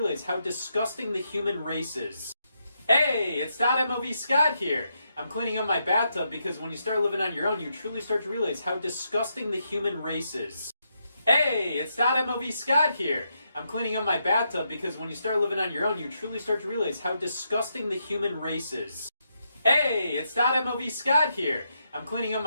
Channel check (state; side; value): inverted; both; correlation -0.81